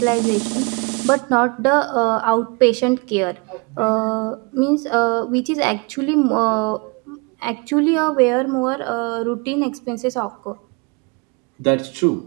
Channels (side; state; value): left; quieter; 30.2 dB